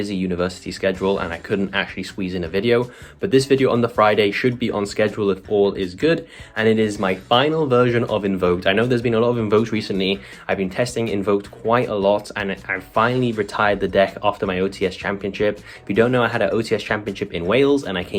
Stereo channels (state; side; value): identical; both; correlation 1.00